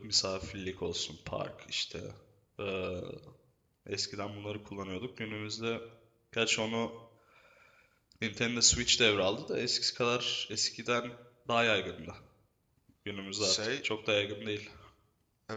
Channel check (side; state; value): both; identical; correlation 1.00